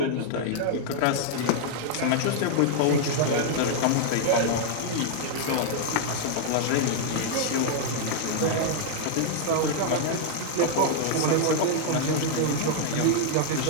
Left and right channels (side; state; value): both; different; correlation -0.01